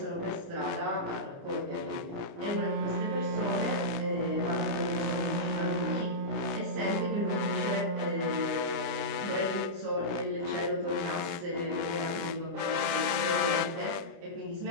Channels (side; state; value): left; late; 29 ms